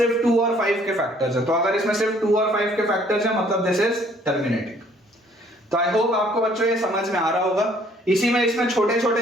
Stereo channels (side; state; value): both; normal; correlation 0.60